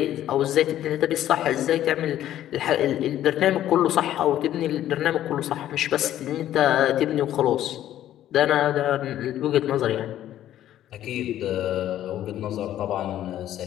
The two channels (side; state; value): right; quieter; 12.3 dB